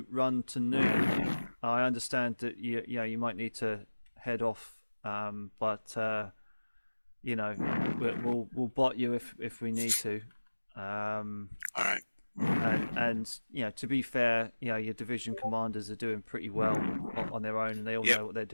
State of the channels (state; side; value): inverted; both; correlation -1.00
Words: run to noon. I understand that you might need to head off, but we'll bot you if we need to. All right. And to be fair, your division commanders are doing pretty well on their own, and they all know what they're